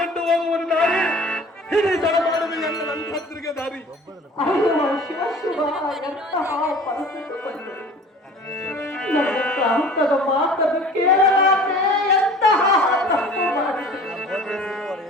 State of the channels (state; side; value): normal; both; correlation 0.45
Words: ಹೋಗುವನು ದಾರಿ ಹಿಡಿತನ ಮಾಡುವುದು ಎನ್ನ ನಂತರಿಗೆ ದಾರಿ. ಶಿವ ಶಿವ, ಎಂತಹ ಪರಿಸ್ಥಿತಿ ಬಂದಿದೆ. ನನ್ನ ಪ್ರಾಂತದ ಮಾತನ್ನು ಕೇಳಲಾರೆ ಎಂತಹ ತಪ್ಪು ಮಾಡಿದೆ.